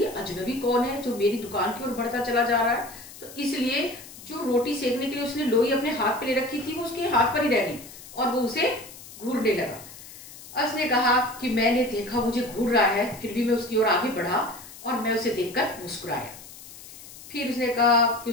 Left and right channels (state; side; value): noise; left; hiss, 17 dB below the sound